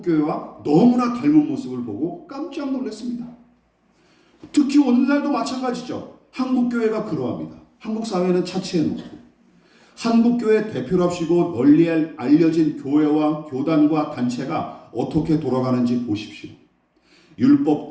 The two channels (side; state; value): both; identical; correlation 1.00